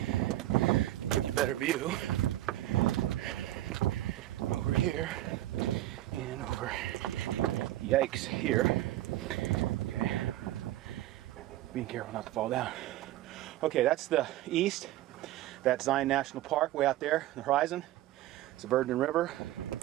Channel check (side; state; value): left; quieter; 14.8 dB